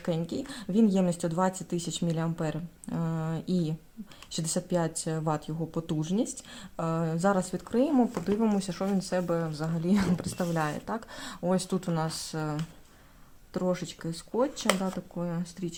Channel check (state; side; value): identical; both; correlation 1.00